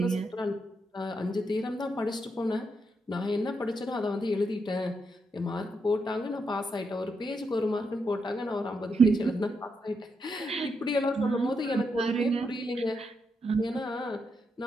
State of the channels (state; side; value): normal; both; correlation 0.81